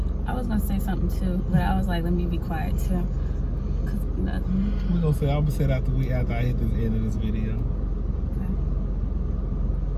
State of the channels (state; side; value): identical; both; correlation 1.00